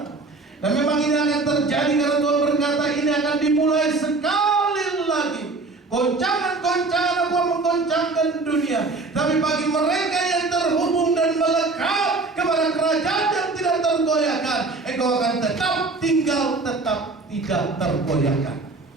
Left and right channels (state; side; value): quieter; left; 3.6 dB